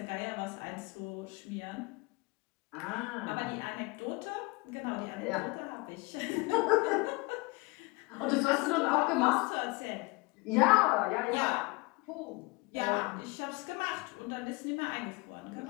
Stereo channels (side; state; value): right; quieter; 26.0 dB